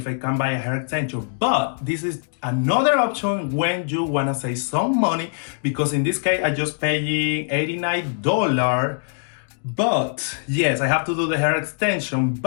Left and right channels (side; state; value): right; silent; digital silence